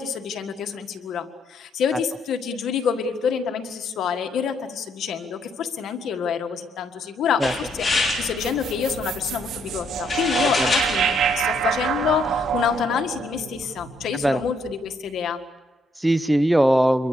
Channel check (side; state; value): both; normal; correlation 0.72